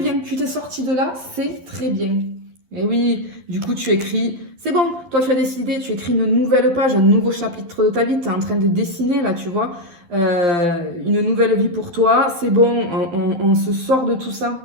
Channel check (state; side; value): late; left; 12 ms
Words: Tu t'es sorti de là, c'est très bien. Et oui, du coup, tu écris, c'est bon, toi tu as décidé, tu écris une nouvelle page, un nouveau chapitre de ta vie, tu es en train de dessiner là, tu vois, une nouvelle vie pour toi, c'est bon, on se sort de tout